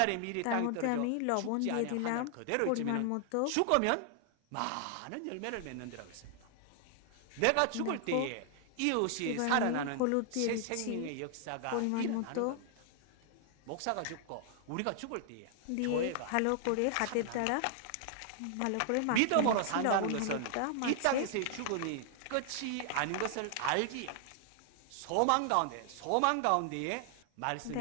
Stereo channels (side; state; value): both; different; correlation 0.00